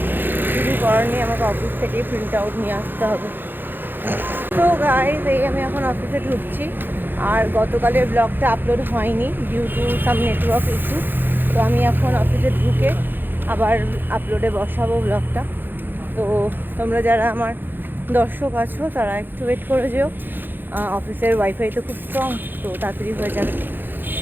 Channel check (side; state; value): left; late; 0.095 ms